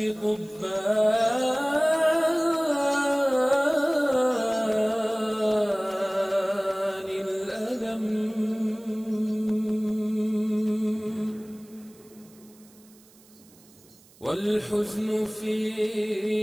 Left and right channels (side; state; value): right; noise; hiss, 27 dB below the sound